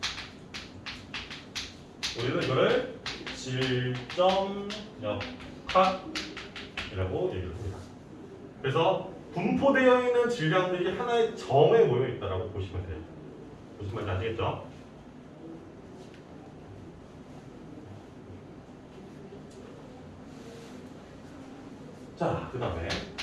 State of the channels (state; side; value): identical; both; correlation 1.00